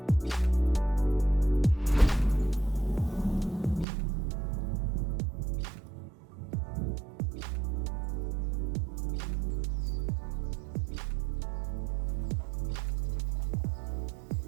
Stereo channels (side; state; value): left; drops out; at 3.9 s